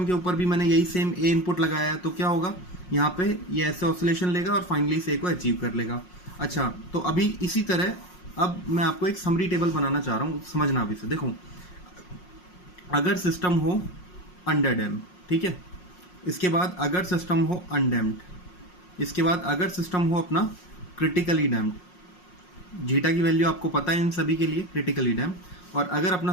के ऊपर भी मैंने यही सेम A इनपुट लगाया है तो क्या होगा, यहाँ पे ये ऐसे ऑसिलेशन लेगा और फाइनली इस A को अचीव कर लेगा। अच्छा, तो अभी इसी तरह अब मैं आपको एक समरी टेबल बनाना चाह रहा हूँ, समझना अभी से। देखो अगर सिस्टम हो अंडर डैम, ठीक है, इसके बाद अगर सिस्टम हो अनडैम्ड, इसके बाद अगर सिस्टम हो अपना क्रिटिकली डैम्ड, जीटा की वैल्यू आपको पता है इन सभी के लिए, क्रिटिकली डैम्ड, और अगर अपना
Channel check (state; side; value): late; right; 5.5 ms